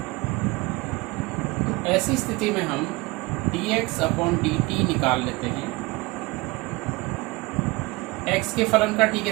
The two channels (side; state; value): left; quieter; 23.8 dB